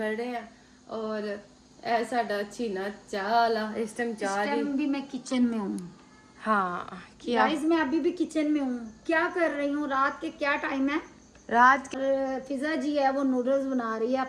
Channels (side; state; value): both; identical; correlation 1.00